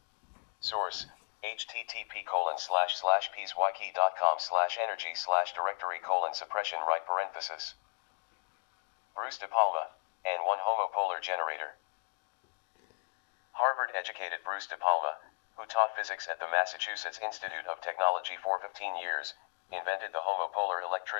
Source: http://pswiki.com/energy/directory:suppression right parenthesis. Bruce De Palma, and 1 homopolar generator. Harvard-educated Bruce De Palma, who taught physics at the Massachusetts Institute of Technology for 15 years, invented the homopolar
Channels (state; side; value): silent; right; digital silence